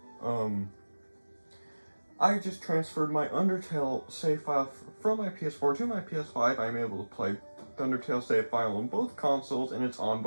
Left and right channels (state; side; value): inverted; both; correlation -1.00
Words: transferred my Undertale save file from my PS4 to my PS5. I'm able to play the Undertale save file on both consoles, and it's on